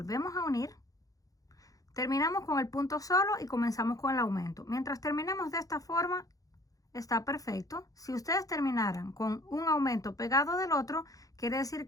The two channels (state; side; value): late; right; 0.17 ms